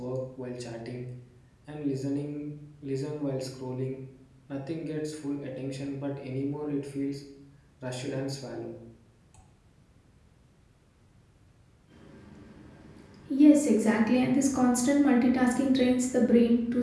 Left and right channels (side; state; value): both; identical; correlation 1.00